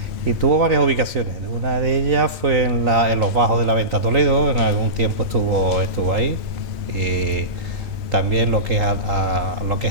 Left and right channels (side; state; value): left; late; 2.5 ms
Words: Y tuvo varias ubicaciones. Una de ellas fue en los bajos de la Venta Toledo, en algún tiempo estuvo ahí. Y también lo que